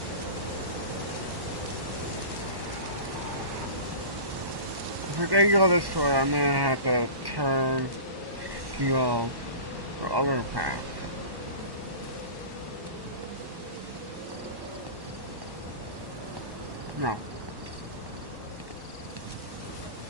If I can go this way, I'm gonna have to turn to go the other path. No.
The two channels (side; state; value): left; late; 1.1 ms